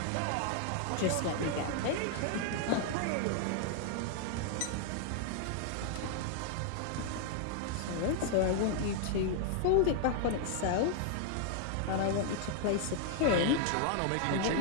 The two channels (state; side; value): different; both; correlation 0.00